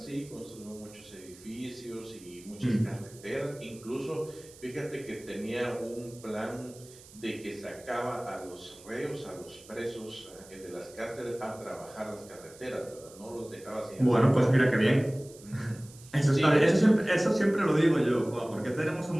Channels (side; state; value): right; noise; hiss, 21 dB below the sound